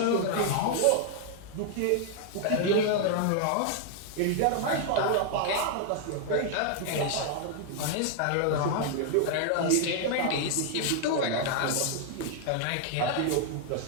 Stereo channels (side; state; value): both; different; correlation 0.00